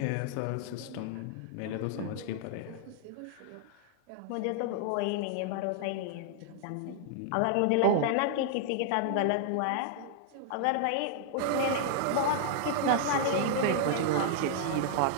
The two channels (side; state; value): both; different; correlation -0.01